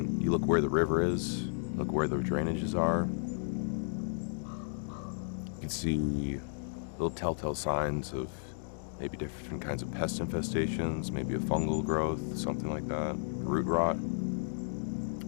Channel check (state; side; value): silent; right; digital silence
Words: you look where the river is, look where the drainages are. You can see little telltale signs of maybe different kinds of pest infestations, maybe a fungal growth, something like that, root rot,